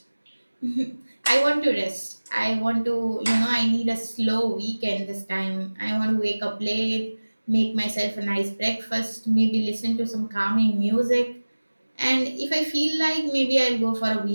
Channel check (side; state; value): both; inverted; correlation -1.00